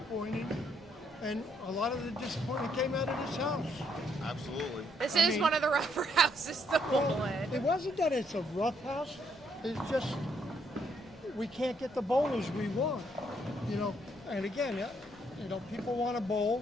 and a lot of the disappointment came out of this house. Absolutely. This is one of the rougher houses to bowl in. It wasn't that it's a rough house. It's just we can't get the bowlers we want. And again, people want to bowl,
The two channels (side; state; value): left; noise; rumble, 27 dB below the sound